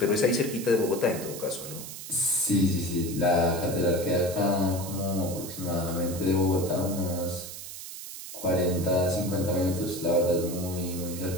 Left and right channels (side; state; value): right; noise; hiss, 11 dB below the sound